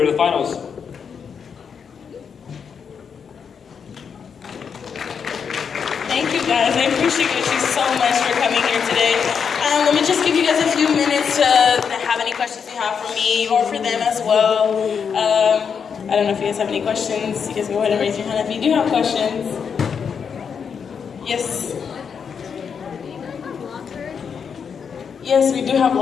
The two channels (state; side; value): quieter; right; 6.7 dB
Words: the finals. Thank you guys. I appreciate you so much for coming here today. Let me just give you guys a few minutes to have any questions you have for me or for them as well. I don't know if you guys have any questions. You guys go ahead and raise your hand if you do have questions. Yes. Yes, we do have